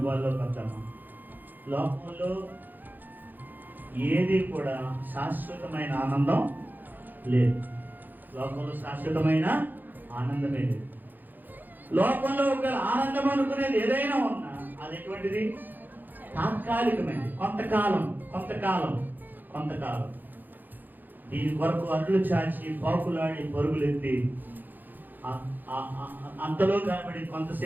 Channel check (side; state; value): left; late; 0.087 ms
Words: వద్దామా? లోకంలో ఏది కూడా శాశ్వతమైన ఆనందం లేదు. లోకంలో శాశ్వతమైన ఆనందమే లేదు. లోకంలో ఒక ఆనందం అనుకునేది ఏదైనా ఉన్నా అది ఎటువంటిది? తాత్కాలికమైనది, కొంతకాలం. దీని కొరకు అడ్లు చాచి పాకులాడి పరుగులెత్తి అంతలో కనబడి